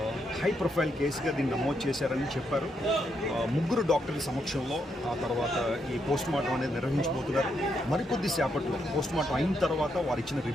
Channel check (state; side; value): normal; both; correlation 0.79